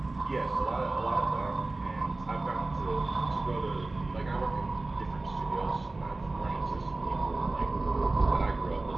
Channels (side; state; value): left; quieter; 3.1 dB